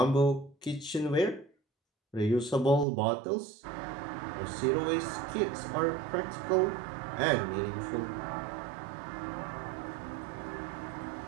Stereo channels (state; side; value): drops out; left; at 2.9 s